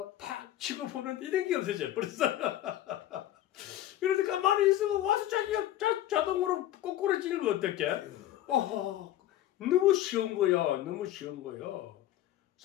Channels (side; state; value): right; quieter; 13.3 dB